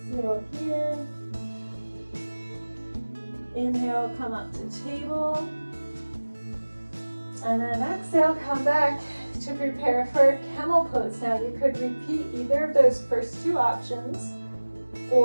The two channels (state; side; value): inverted; both; correlation -1.00